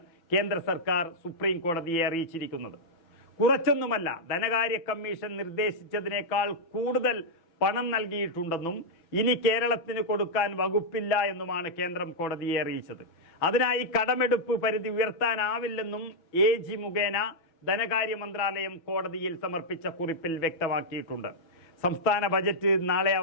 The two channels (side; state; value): right; late; 6.0 ms